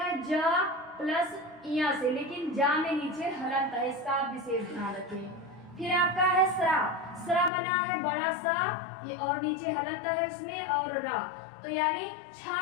जा प्लस इया से, लेकिन जा में नीचे हलंत है, इसका आप विशेष ध्यान रखें। फिर आपका है स्रा, स्रा बना है बड़ा सा ये और नीचे हलंत है इसमें और रा, तो यानी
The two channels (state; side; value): drops out; right; at 7.5 s